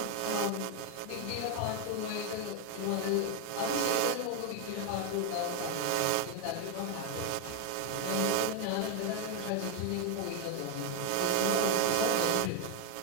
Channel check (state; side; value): different; both; correlation 0.00